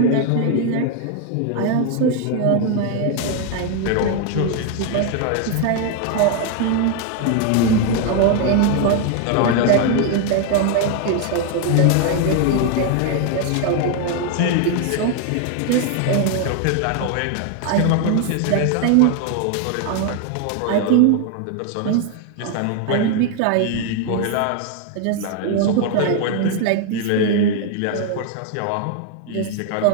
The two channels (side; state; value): both; different; correlation 0.00